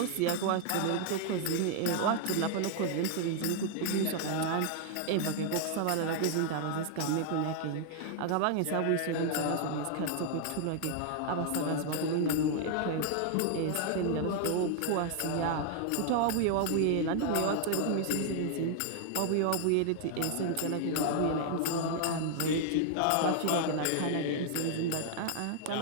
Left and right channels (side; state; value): both; different; correlation 0.00